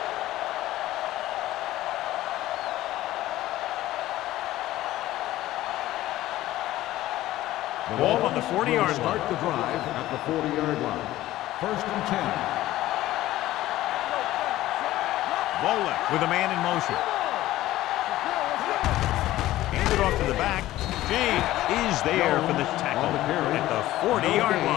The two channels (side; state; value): right; quieter; 15.4 dB